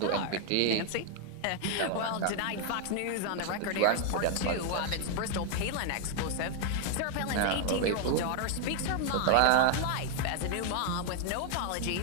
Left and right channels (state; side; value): different; both; correlation 0.00